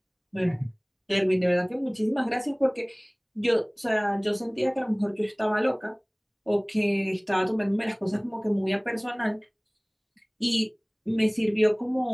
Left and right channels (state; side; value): identical; both; correlation 1.00